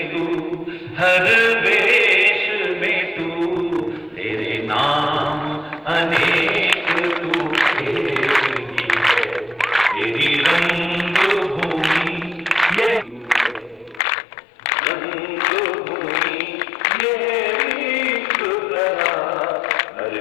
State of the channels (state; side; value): drops out; right; at 14.0 s